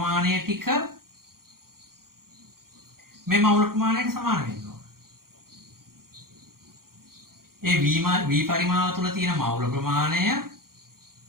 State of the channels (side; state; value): left; late; 0.92 ms